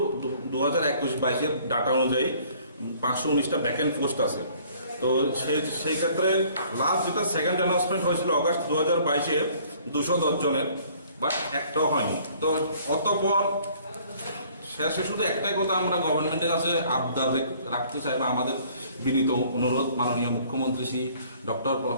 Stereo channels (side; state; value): both; inverted; correlation -0.57